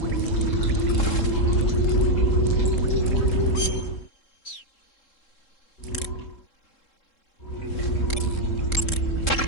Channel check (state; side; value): late; right; 3.7 ms